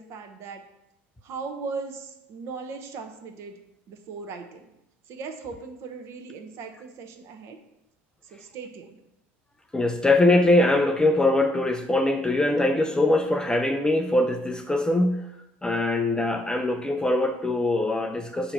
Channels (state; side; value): normal; both; correlation 0.75